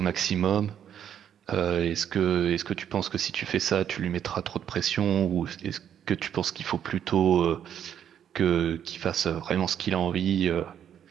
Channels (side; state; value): left; quieter; 9.4 dB